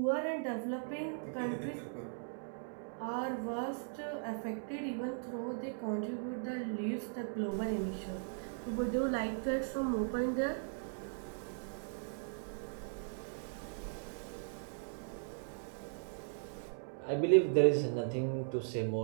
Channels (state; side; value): silent; left; digital silence